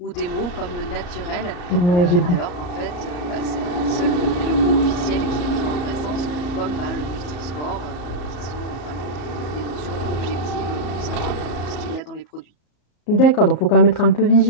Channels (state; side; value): late; right; 34 ms